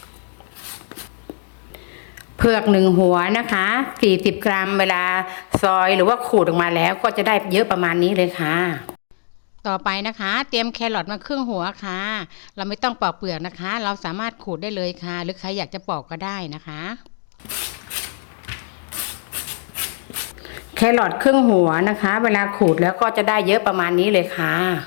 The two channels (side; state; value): right; silent; digital silence